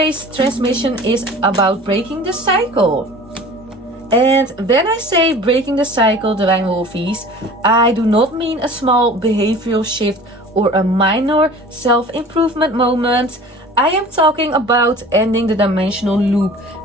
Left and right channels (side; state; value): both; normal; correlation 0.43